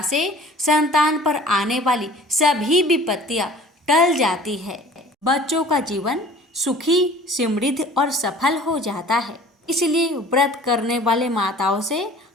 से संतान पर आने वाली सभी विपत्तियां टल जाती है। बच्चों का जीवन सुखी, समृद्ध और सफल हो जाता है। इसलिए व्रत करने वाले माताओं से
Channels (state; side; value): normal; both; correlation 0.47